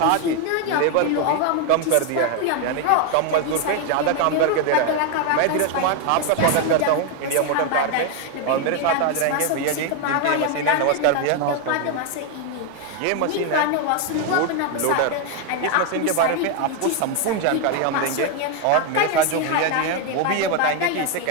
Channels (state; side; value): different; both; correlation 0.01